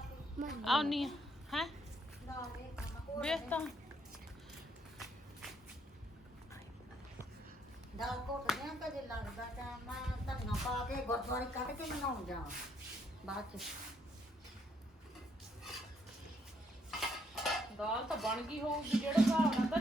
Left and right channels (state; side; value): normal; both; correlation 0.71